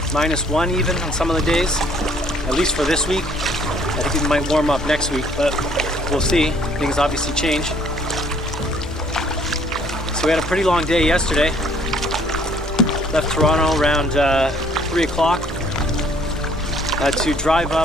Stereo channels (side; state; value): both; normal; correlation 0.60